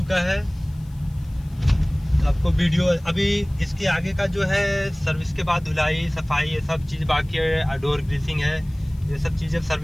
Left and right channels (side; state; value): left; noise; hiss, 29 dB below the sound